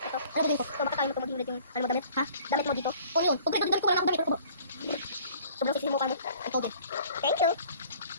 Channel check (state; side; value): inverted; both; correlation -0.52